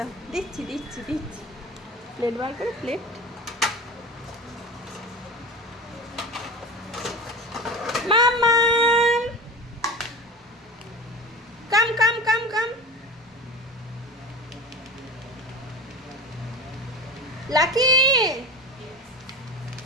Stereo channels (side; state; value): both; normal; correlation 0.32